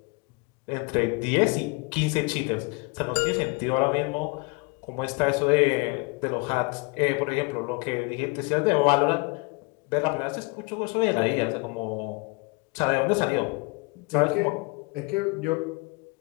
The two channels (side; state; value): right; quieter; 29.0 dB